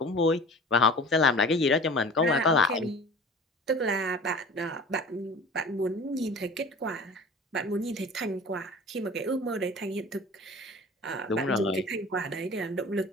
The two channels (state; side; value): normal; both; correlation 0.40